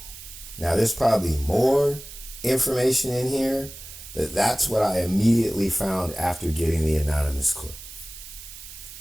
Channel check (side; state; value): right; noise; hiss, 15 dB below the sound